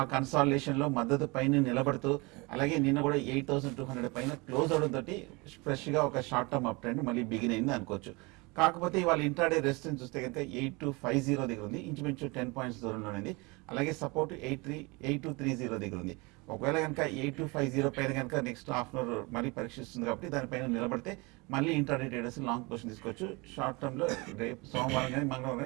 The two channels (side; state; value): left; quieter; 26.5 dB